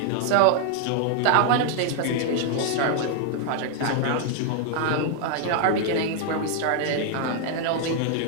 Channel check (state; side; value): different; both; correlation 0.00